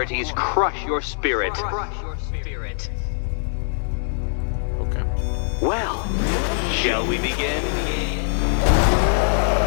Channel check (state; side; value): silent; right; digital silence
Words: crush your spirit. Okay. Well, shall we begin?